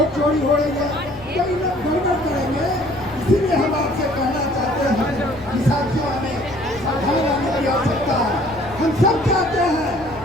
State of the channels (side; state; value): left; noise; rumble, 19 dB below the sound